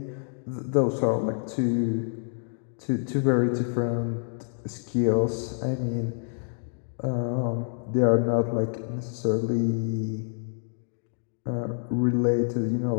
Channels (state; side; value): silent; right; digital silence